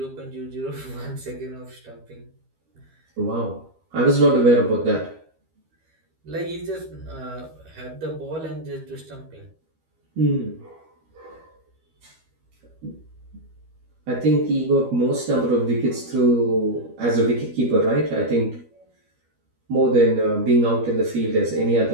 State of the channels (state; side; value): late; left; 13 ms